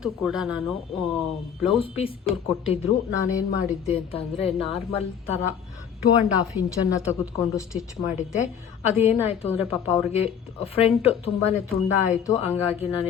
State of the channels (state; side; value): quieter; right; 8.0 dB